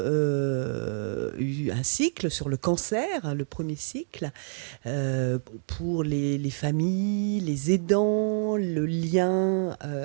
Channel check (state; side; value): silent; left; digital silence